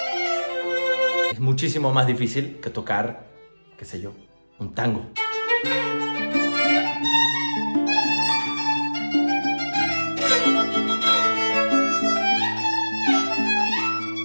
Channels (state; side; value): inverted; both; correlation -1.00